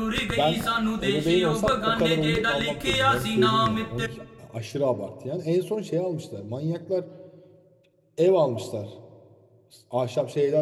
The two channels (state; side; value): identical; both; correlation 1.00